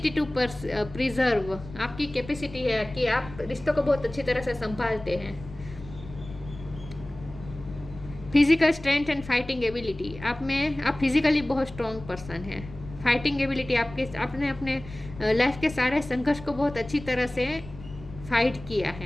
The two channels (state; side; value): noise; left; rumble, 15 dB below the sound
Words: to preserve, आपकी कैपेसिटी है कि आप रिश्तों को बहुत अच्छी तरह से संभालते हैं। Physical strength and fighting ability, आप फिजिकली बहुत स्ट्रॉन्ग पर्सन हैं। फाइटिंग एबिलिटी, आपने अपने लाइफ के सारे संघर्ष को बहुत अच्छी तरह से फाइट किया